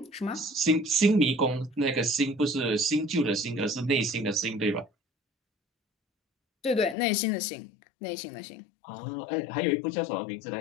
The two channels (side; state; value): right; drops out; at 7.0 s